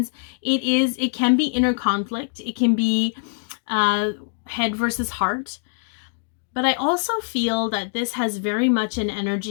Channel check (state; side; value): silent; right; digital silence